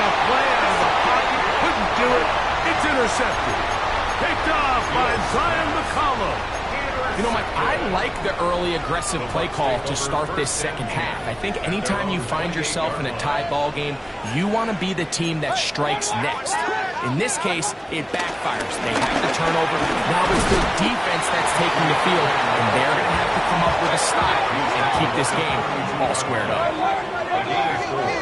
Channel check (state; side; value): identical; both; correlation 1.00